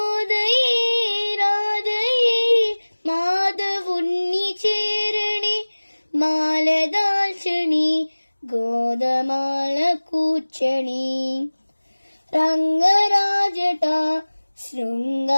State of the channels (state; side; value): inverted; both; correlation -1.00